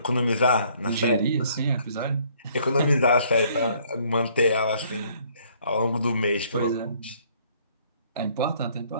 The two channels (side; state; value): both; inverted; correlation -0.63